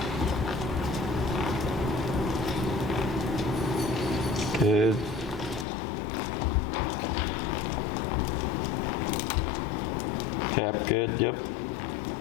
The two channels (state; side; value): drops out; right; at 5.7 s